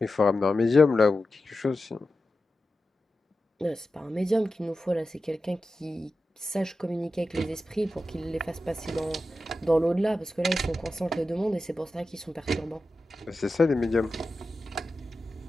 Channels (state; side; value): normal; both; correlation 0.92